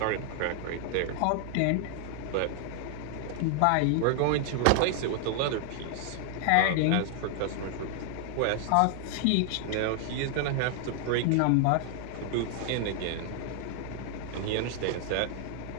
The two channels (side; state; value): both; different; correlation 0.00